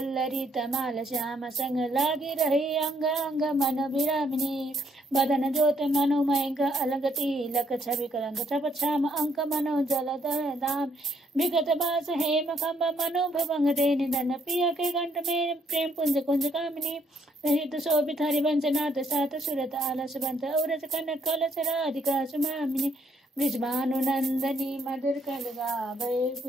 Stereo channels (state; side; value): normal; both; correlation 0.70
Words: तमाल श्याम संग लागी रही अंग अंग मन विरामिनी बदन ज्योत मनोमय अलग तिलक छवि कलंक छप छाम अंक मनो जल दाम विगत बास हेम खम्ब मनो भवंग दे निधन पिया के घंट में प्रेम पुंज कुंज कामिनी रहित शोभित हरिवंश नाथ सात सुरत आलस बंत औरस कनक कलश राधिका सुमामिनी ब्रिजभानुनंदनी मधुर